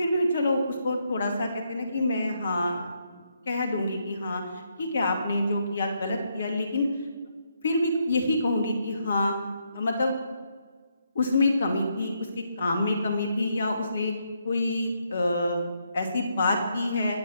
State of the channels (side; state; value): both; inverted; correlation -0.77